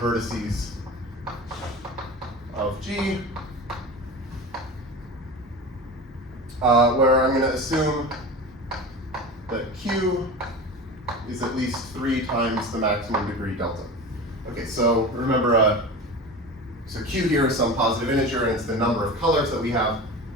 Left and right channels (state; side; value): normal; both; correlation 0.31